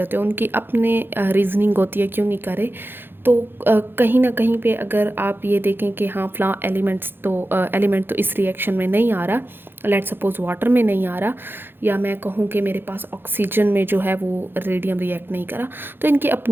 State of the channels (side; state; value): left; late; 0.10 ms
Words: उनकी अपने रीजनिंग होती है क्यों नहीं करे। तो कहीं ना कहीं पे अगर आप ये देखें कि हाँ फला एलिमेंट तो इस रिएक्शन में नहीं आ रहा, लेट सपोज वाटर में नहीं आ रहा, या मैं कहूँ कि मेरे पास ऑक्सीजन में जो है वो रेडियम रिएक्ट नहीं करा, तो इनकी